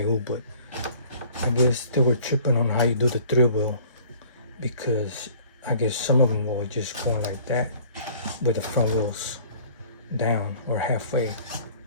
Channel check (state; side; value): inverted; both; correlation -0.53